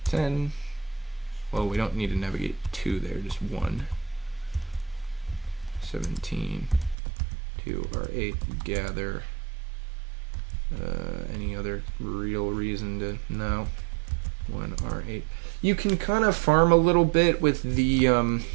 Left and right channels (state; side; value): drops out; left; at 7.0 s